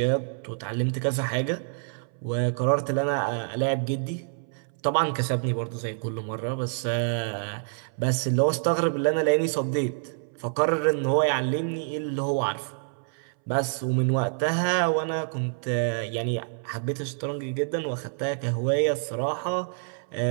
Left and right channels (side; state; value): left; silent; 60 dB below the other